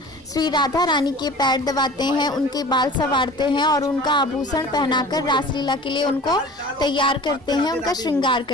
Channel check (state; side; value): normal; both; correlation 0.42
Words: श्री राधा रानी के पैर दबाते हैं, उनके बाल संवारते हैं और उनका आभूषण पहनाकर रासलीला के लिए उनको तैयार करते हैं, उनका श्रृंगार